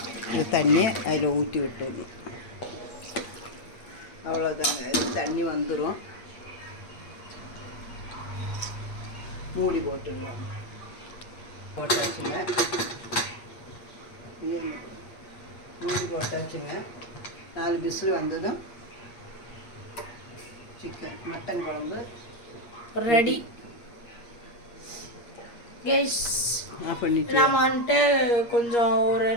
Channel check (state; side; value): late; right; 8.5 ms